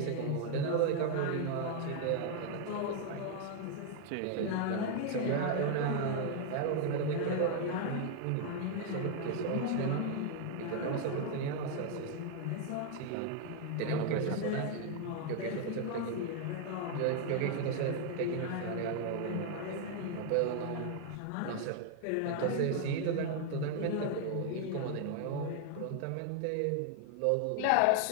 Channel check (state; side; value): different; both; correlation 0.00